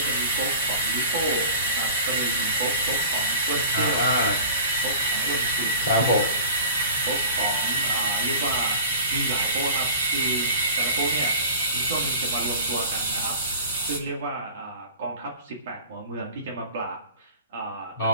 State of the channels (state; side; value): inverted; both; correlation -0.41